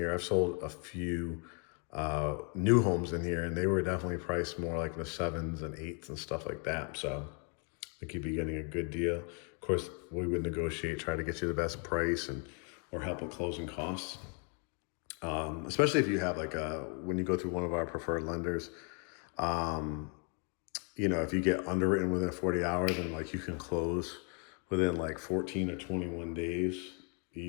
I've sold a few new homes in here, and they were definitely priced more like in the 7s and 8s and stuff like that. So I think you'd be getting a good deal. Of course, we would negotiate, try to get you the best price and or help with closing costs. Especially if you have like when you go through one of our preferred lenders, you know, if you get underwritten within 40 hours and like you can close within like 14 or 21 days,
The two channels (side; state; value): right; quieter; 39.5 dB